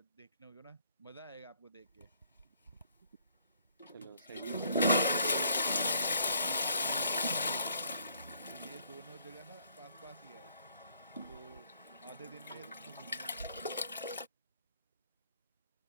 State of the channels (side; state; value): both; inverted; correlation -0.66